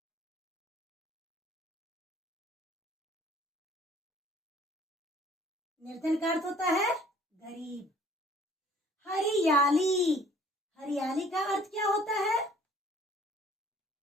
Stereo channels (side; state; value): both; normal; correlation 0.55